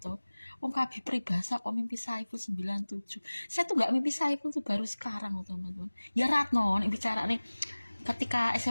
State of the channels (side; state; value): both; inverted; correlation -1.00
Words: tuh. Wong kabeh peribahasa kok mimpi Saiful 97. Saya tuh gak mimpi Saiful tuh baru sekarang teman-teman. Ya Ratno nih bicara nih ketika